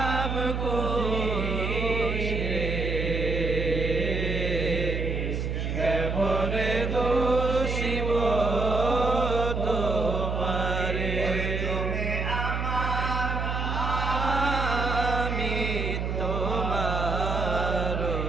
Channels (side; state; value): right; noise; hum, 2 dB below the sound